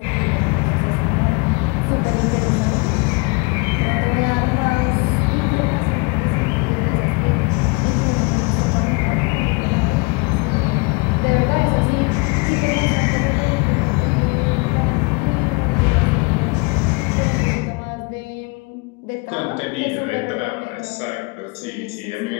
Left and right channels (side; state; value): right; quieter; 28.5 dB